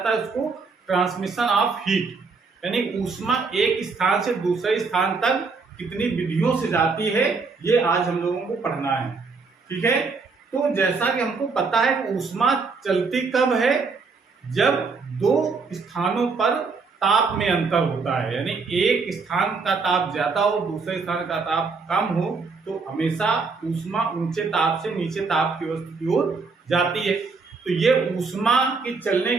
है उसको ट्रांसमिशन ऑफ हीट, यानी ऊष्मा एक स्थान से दूसरे स्थान तक कितनी विधियों से जाती है, ये आज हम लोगों को पढ़ना है। ठीक है, तो जैसा कि हमको पता है कि ऊष्मा चलती कब है, जब दो स्थानों पर ताप में अंतर होता है, यानी एक स्थान का ताप ज्यादा हो, दूसरे स्थान का ताप कम हो, तो हमेशा ऊष्मा ऊंचे ताप से नीचे ताप की वस्तु की ओर जाती है। तो ये ऊष्मा की चलने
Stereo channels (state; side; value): quieter; left; 4.5 dB